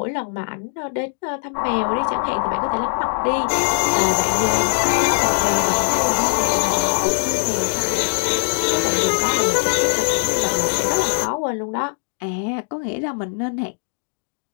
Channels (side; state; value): right; silent; digital silence